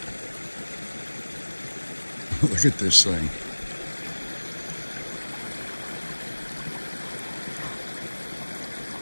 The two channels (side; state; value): both; inverted; correlation -1.00